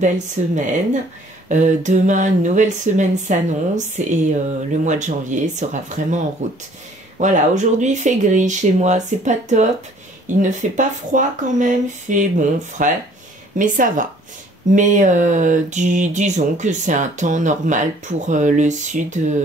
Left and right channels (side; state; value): both; normal; correlation 0.56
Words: semaine. Demain, une nouvelle semaine s'annonce et le mois de janvier sera vraiment en route. Voilà, aujourd'hui il fait gris chez moi, c'est pas top, il ne fait pas froid quand même, il fait bon, frais, mais ça va. Mais disons que c'est un temps normal pour le sud